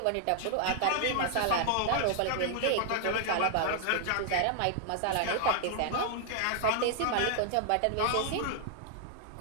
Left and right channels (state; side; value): different; both; correlation 0.00